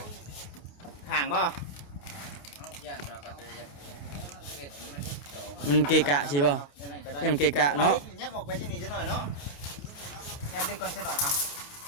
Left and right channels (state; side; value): late; right; 28 ms